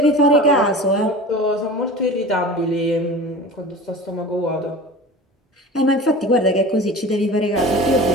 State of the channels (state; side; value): normal; both; correlation 0.36